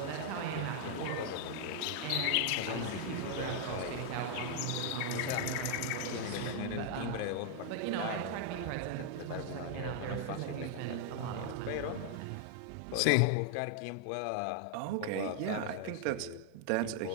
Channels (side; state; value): both; different; correlation 0.00